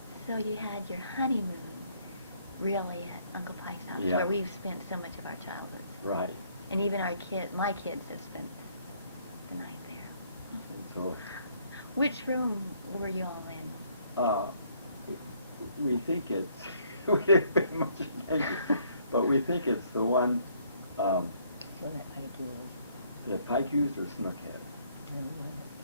So you had your honeymoon really at Uncle Pike's house, Yeah. where we've spent so much of our childhood. Right. And even my kids have spent the night there. And so Which room were you all in? we think it's, we didn't pay much attention, but we think it's the one So that Pike was. that Pike used or Snook had. No, that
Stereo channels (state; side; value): inverted; both; correlation -0.66